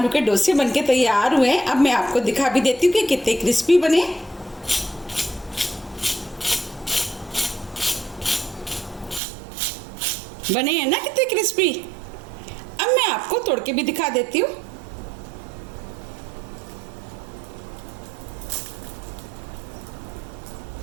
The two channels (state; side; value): drops out; left; at 9.2 s